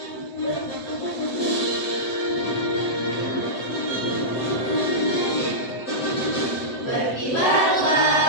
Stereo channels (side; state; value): right; late; 7.8 ms